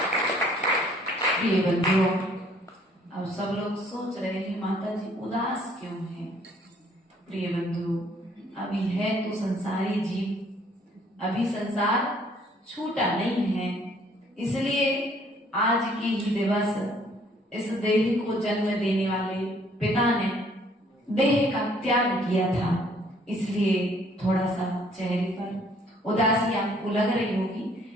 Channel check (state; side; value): normal; both; correlation 0.61